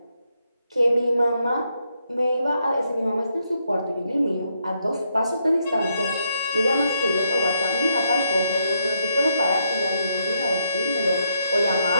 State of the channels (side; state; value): both; inverted; correlation -0.77